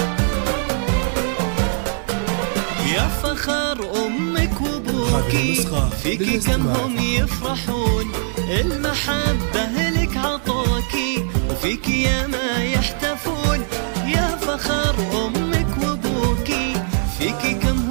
يا فخر أمك وأبوكي فيكي كم هم يفرحون، المحبة لك عطوكي وفيكي يا ما يحتفون. يا فخر أمك وأبوكي فيكي كم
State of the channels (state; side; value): silent; left; 65 dB below the other